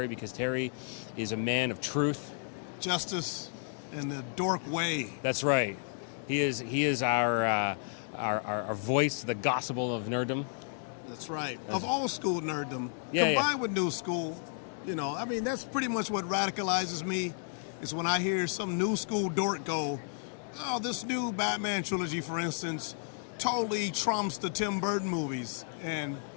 because Terry is a man of truth, justice, and the dork way. That's right. He is our voice to the gospel of nerddom. That's right. Of old school nerddom, Yeah, combined with new school. I mean, that's pretty much what radicalizes me. Is when I hear some new school dork go, "Oh, this new Batman trilogy, for instance, totally trumps the Tim Burton movies," and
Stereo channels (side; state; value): right; silent; 56 dB below the other